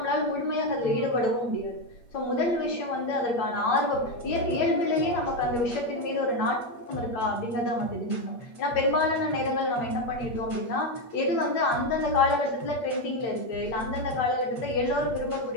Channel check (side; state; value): right; late; 8.3 ms